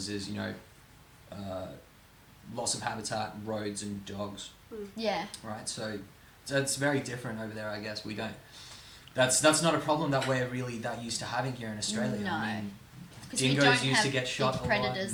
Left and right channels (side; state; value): both; identical; correlation 1.00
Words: is loss of habitat, roads, and dogs. Yeah. Right, so it's very different over there. I guess we don't. That's not a problem that we're really that used to having here in Australia. No. I mean, Because we dingoes don't used have to get shot big a lot.